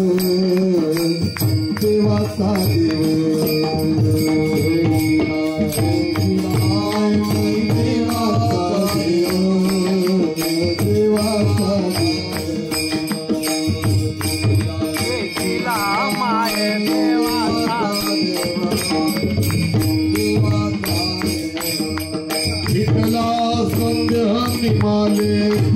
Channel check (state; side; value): identical; both; correlation 1.00